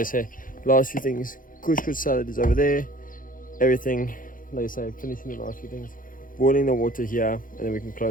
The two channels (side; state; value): right; late; 0.40 ms